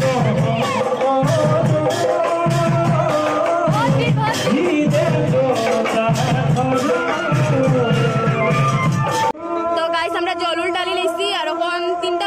তো গাইস আমরা জলুল ডালি লইছি আর এখন 3টা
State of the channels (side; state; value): both; identical; correlation 1.00